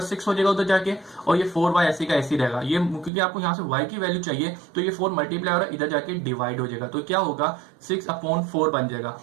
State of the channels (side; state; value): left; drops out; at 3.1 s